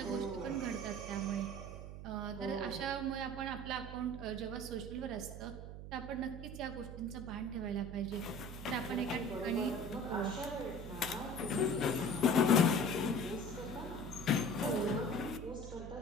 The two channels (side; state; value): right; noise; hum, 10 dB below the sound